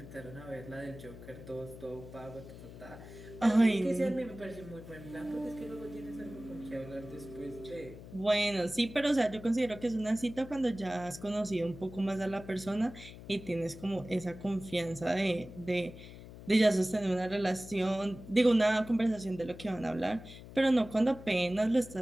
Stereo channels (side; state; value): left; noise; hum, 15 dB below the sound